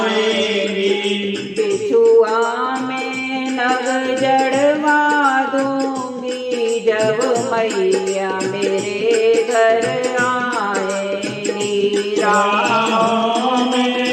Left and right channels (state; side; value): identical; both; correlation 1.00